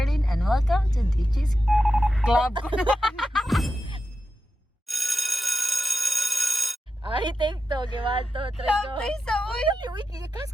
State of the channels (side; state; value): both; normal; correlation 0.90